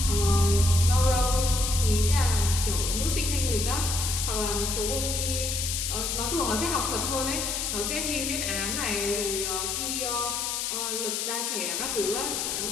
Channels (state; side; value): noise; left; hiss, 1 dB below the sound